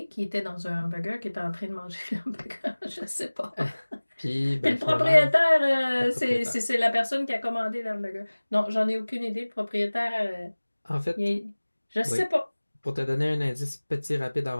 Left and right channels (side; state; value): both; inverted; correlation -1.00